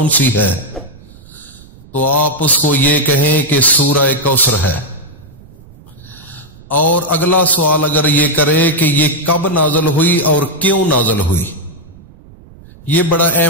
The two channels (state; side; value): noise; right; rumble, 23 dB below the sound